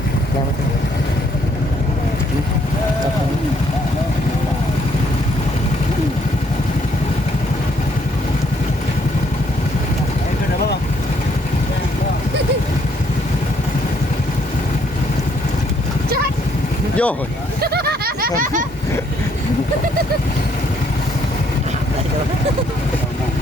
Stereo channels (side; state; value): both; normal; correlation 0.68